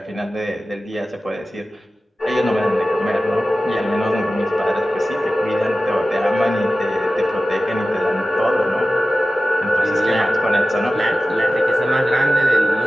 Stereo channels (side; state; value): both; normal; correlation 0.95